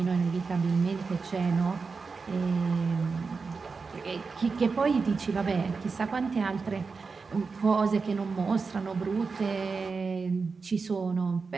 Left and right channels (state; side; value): quieter; left; 4.7 dB